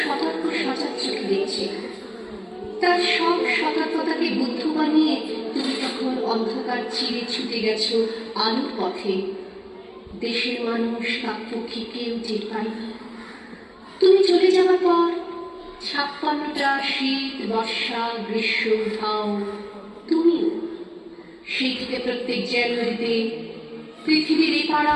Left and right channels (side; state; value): both; identical; correlation 1.00